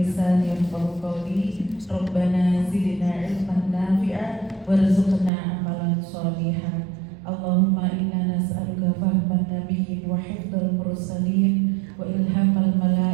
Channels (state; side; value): drops out; left; at 5.3 s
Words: lisani yafqahu qawli. Rabbana zidna ilman nafi'a warzuqna amalan shalihan. Allahumma inna nas'aluka fahman nabiyyin wa hifdzal mursalin wa ilhamal